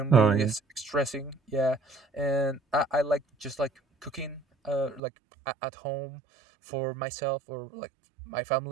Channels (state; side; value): drops out; left; at 5.0 s